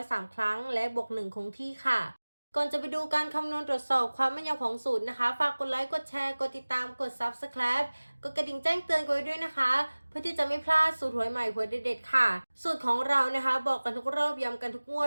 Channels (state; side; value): inverted; both; correlation -1.00